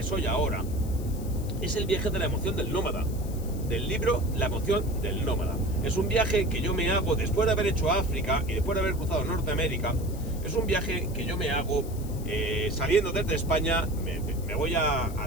soy ahora, es el viaje de la emoción del nómada, del libro La emoción del nómada. Es un viaje que yo me hago después de haber hecho África y después de haber cruzado Norteamérica. Es un viaje que yo me hago saliendo desde España, me voy a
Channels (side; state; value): left; noise; hiss, 18 dB below the sound